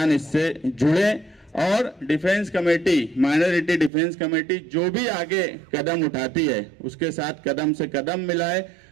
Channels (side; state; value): left; drops out; at 3.9 s